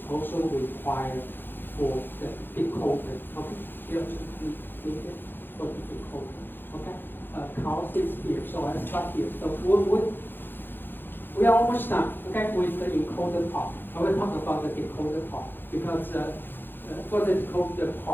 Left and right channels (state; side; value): late; right; 0.099 ms